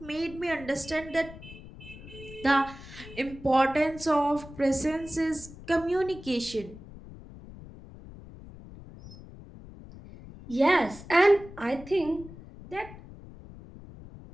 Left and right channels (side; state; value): left; noise; rumble, 16 dB below the sound